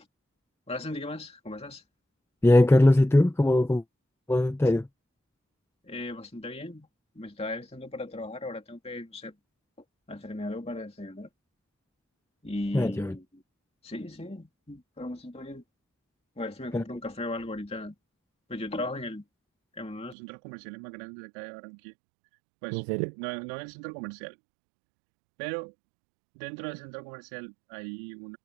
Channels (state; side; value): drops out; left; at 20.2 s